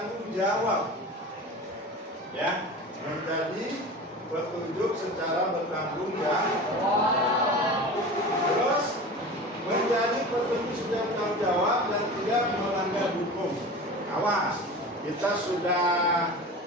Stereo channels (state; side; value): normal; both; correlation 0.34